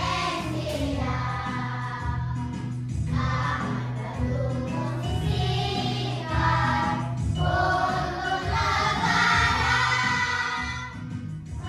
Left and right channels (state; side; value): identical; both; correlation 1.00